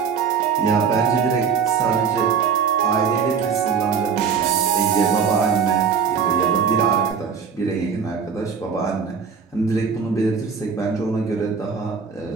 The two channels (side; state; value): left; quieter; 6.3 dB